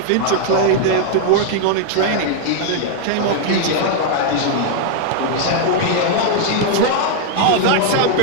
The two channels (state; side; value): different; both; correlation 0.00